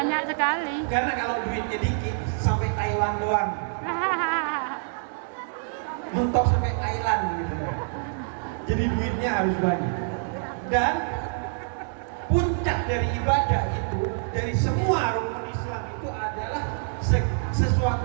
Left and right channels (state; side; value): silent; left; 61 dB below the other